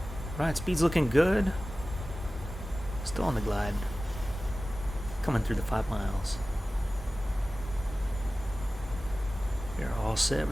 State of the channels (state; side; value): normal; both; correlation 0.96